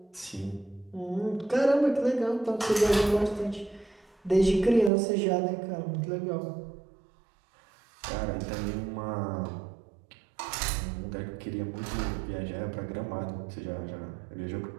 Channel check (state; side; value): drops out; left; at 4.9 s